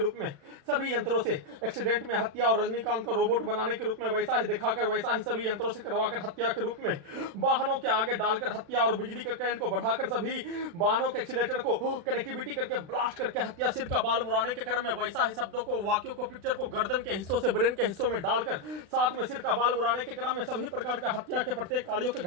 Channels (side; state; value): left; late; 36 ms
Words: में सभी यंत्रों से एक्सीडेंट में हत्या और रजनीकांत का रोबोट बनाने के रूप में वैसा ही दिखाकर वैसा ही सभी यंत्रों से करवाकर हत्या के रूप में वाहनों के आगे डालकर हत्या और बिजली के करंट को बढ़ाकर सभी वाहनों के एक्सीलेटर को कनेक्टिविटी करके ब्लास्ट करके हत्या सिर का बाल मुड़ाने के क्रम में वैसा ही शब्दों को वाक्यों को पिक्चर को गर्दन के हिस्सों से ब्रेन के हिस्सों में डालकर साथ में सिर का बाल मुड़ाने के क्रम में सभी प्रकार का हत्या के प्रत्येक कार्यों के